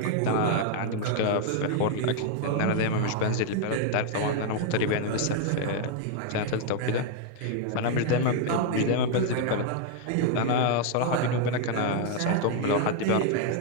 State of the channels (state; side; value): different; both; correlation 0.00